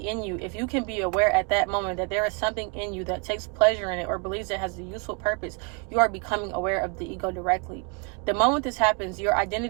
in you, if you can be aware at that moment that there is something in you that takes pleasure in it or believes it has a useful purpose, you are becoming aware of the ego directly. The moment this happens, your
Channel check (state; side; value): quieter; left; 34.7 dB